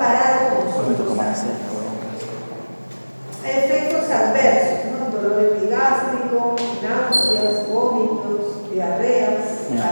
con los otros fármacos. Efectos adversos, ¿no? Dolor epigástrico, náuseas, vómitos, diarreas,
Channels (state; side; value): inverted; both; correlation -1.00